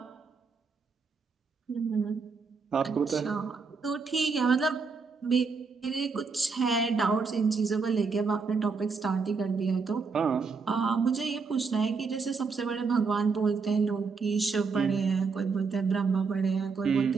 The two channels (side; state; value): left; quieter; 4.9 dB